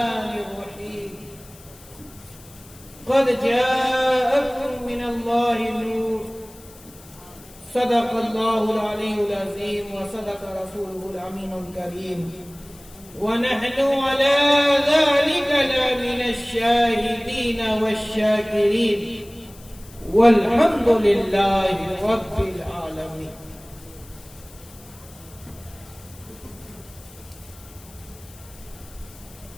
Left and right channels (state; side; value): noise; left; hiss, 22 dB below the sound